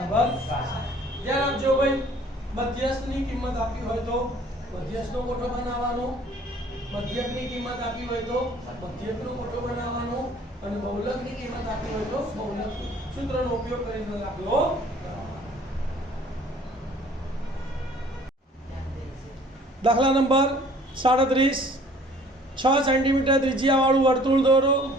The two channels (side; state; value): both; normal; correlation 0.54